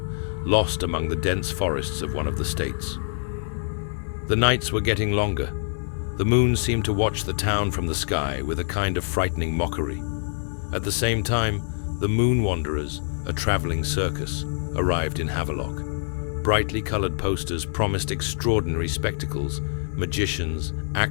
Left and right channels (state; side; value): silent; right; 62 dB below the other